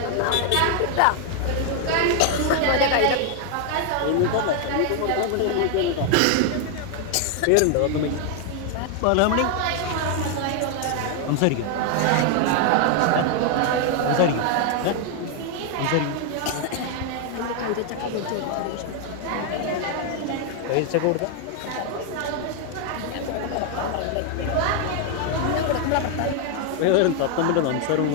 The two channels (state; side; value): different; both; correlation 0.00